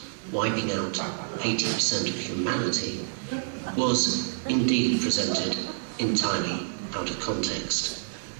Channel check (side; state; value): left; silent; digital silence